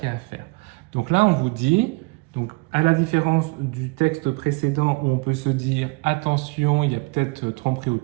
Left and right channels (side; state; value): left; quieter; 28.2 dB